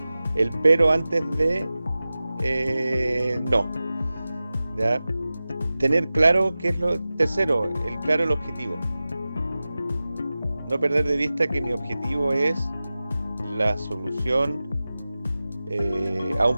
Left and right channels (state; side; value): inverted; both; correlation -0.96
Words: pero antes de no. ¿Ya? Tener claro qué es lo tercero, el objetivo. No perder de vista que mi objetivo es la solución a un